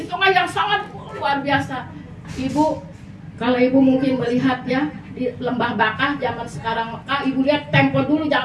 tengah yang sangat luar biasa. Ibu, kalau ibu mungkin melihat ya di lembah Bakah zaman sekarang Mekah, ibu lihat tempo dulu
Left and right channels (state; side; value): identical; both; correlation 1.00